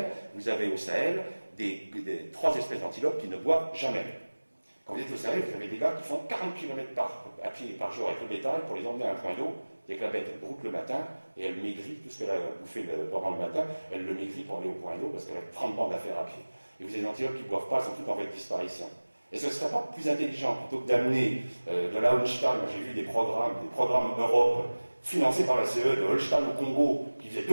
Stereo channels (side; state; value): both; inverted; correlation -1.00